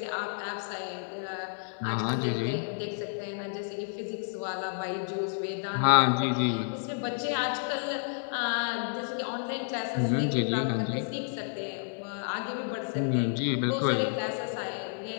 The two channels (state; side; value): silent; right; digital silence